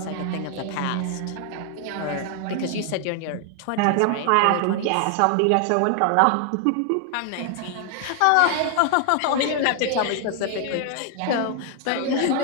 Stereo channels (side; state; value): both; different; correlation 0.00